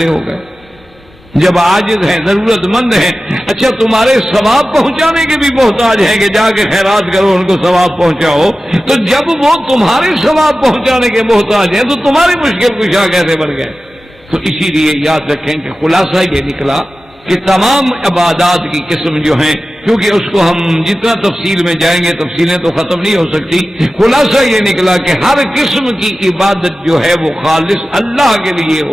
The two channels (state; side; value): normal; both; correlation 0.95